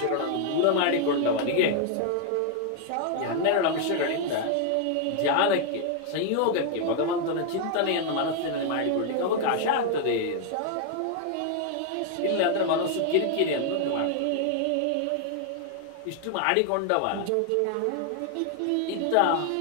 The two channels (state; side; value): different; both; correlation 0.00